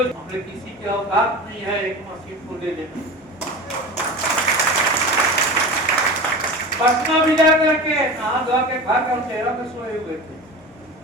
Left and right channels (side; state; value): both; normal; correlation 0.31